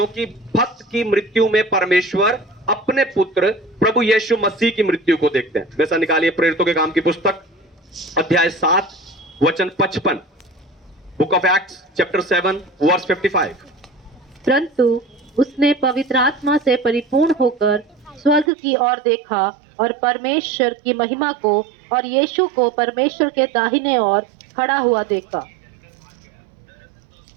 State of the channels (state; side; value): drops out; left; at 18.5 s